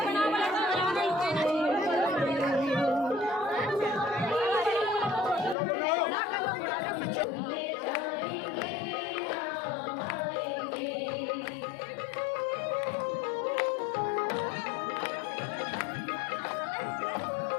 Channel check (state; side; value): drops out; right; at 5.6 s